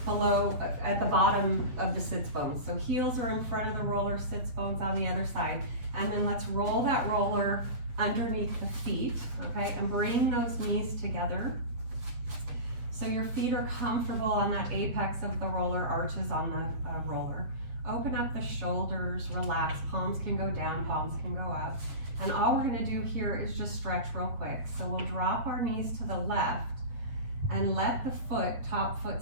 below, at the bottom of the sits bones. So heels are in front of the roller, sits bones on the other side. And then let's roll that roller underneath the feet, okay, and bring those knees together. So your feet are comfortable on that apex of the roller, arches on the roller. Open up the shoulders, relax, palms can go down, palms can go up. And all we're gonna do here is just stretch real quick. So we'll drop our knees to the left and let the foot, top foot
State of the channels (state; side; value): late; left; 8.5 ms